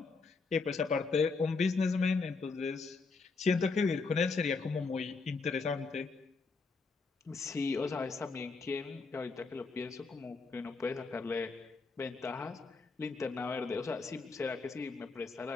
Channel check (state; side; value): quieter; right; 4.3 dB